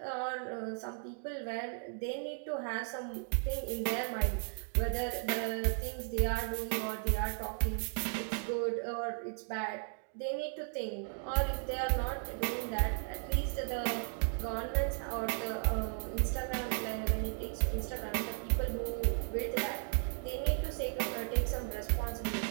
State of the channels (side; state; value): left; silent; 54 dB below the other